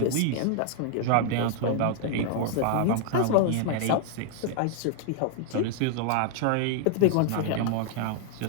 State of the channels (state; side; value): different; both; correlation 0.00